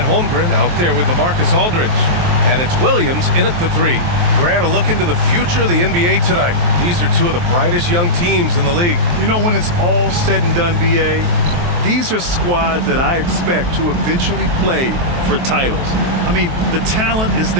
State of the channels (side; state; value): left; late; 23 ms